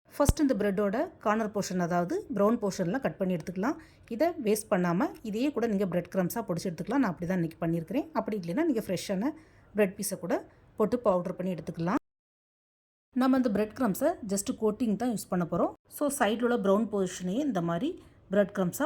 ஃபஸ்ட் இந்த ப்ரெட்டோட கார்னர் போர்ஷன், அதாவது ப்ரௌன் போர்ஷன்லாம் கட் பண்ணி எடுத்துக்கலாம். இதை வேஸ்ட் பண்ணாமல் இதையே கூட நீங்கள் பிரெட் க்ரம்ஸாக பொடிச்சு எடுத்துக்கலாம். நான் அப்படி தான் இன்றைக்கி பண்ணியிருக்கிறேன். அப்படி இல்லைன்னா நீங்கள் ஃப்ரெஷ்ஷான பிரெட் பீஸை கூட போட்டு பவுடர் பண்ணி எடுத்துக்கலாம். நம்ம இந்த பிரெட் க்ரம்ஸை ஜஸ்ட்டு கோட்டிங் தான் யூஸ் பண்ண போகிறோம். ஸோ சைடில் உள்ள ப்ரௌன் போர்ஷனையே இந்த மாதிரி பிரெட் க்ரம்ஸாக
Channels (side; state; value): both; identical; correlation 1.00